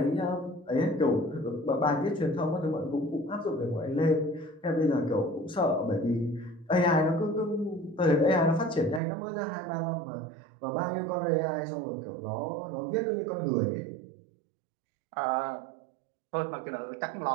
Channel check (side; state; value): left; drops out; at 9.0 s